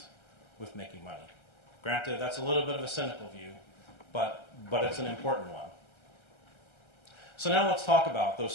with making money. Granted, that's a little bit of a cynical view, but it's an important one. So now let's talk about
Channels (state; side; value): late; right; 1.3 ms